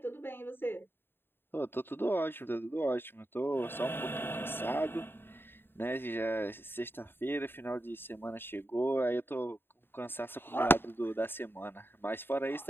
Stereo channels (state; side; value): late; right; 0.10 ms